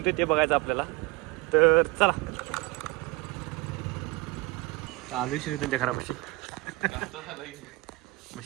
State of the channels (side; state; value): left; quieter; 22.3 dB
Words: ते बघायचं आपल्याला. तर चला चालू श्रीरथांच्या घरापाशी. मग